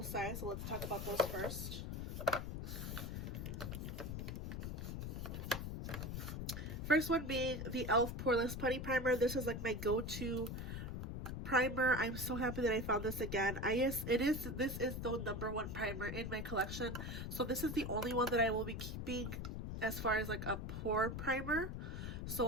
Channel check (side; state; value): left; noise; rumble, 4 dB below the sound